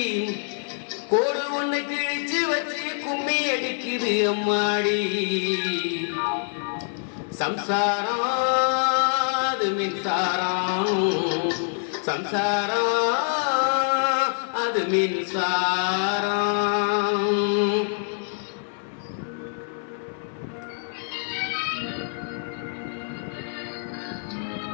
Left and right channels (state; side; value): silent; right; 61 dB below the other